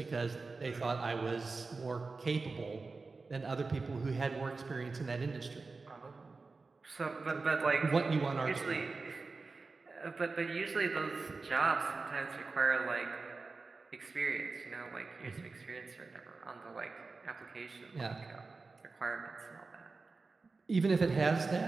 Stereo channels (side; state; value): left; quieter; 4.0 dB